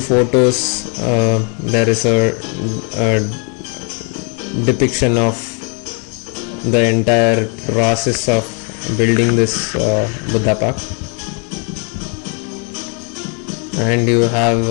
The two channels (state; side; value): quieter; right; 38.5 dB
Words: photos there is a depiction of the entire process of building this Budha Park. And you have